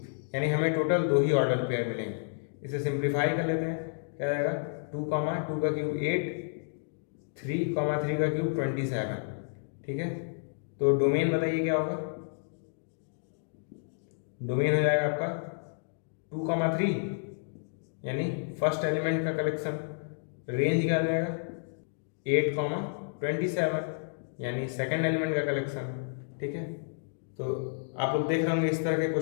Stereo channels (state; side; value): silent; right; digital silence